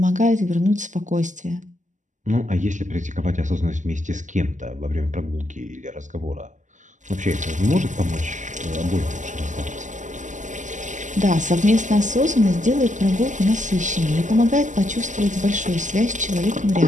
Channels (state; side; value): late; left; 0.36 ms